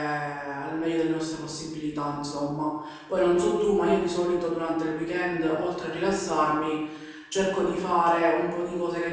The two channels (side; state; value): both; identical; correlation 1.00